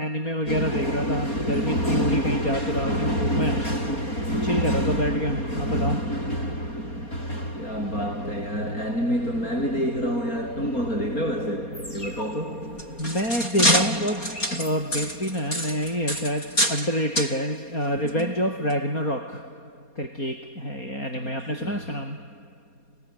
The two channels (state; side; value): late; right; 4.3 ms